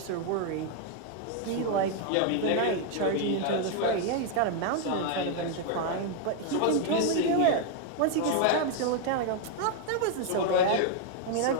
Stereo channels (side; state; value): both; different; correlation 0.00